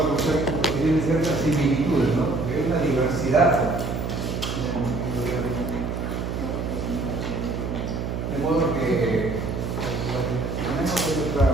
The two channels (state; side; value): noise; right; hum, 3 dB below the sound